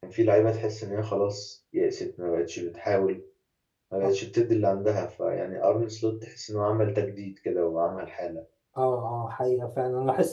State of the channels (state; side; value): identical; both; correlation 1.00